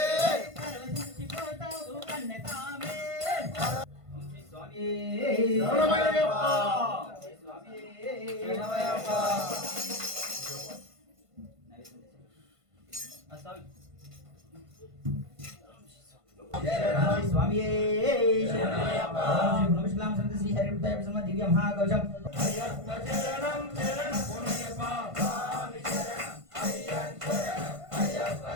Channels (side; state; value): left; late; 1.5 ms